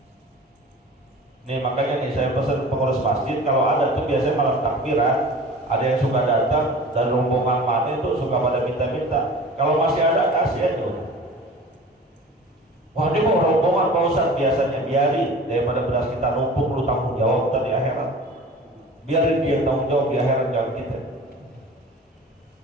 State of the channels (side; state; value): both; normal; correlation 0.40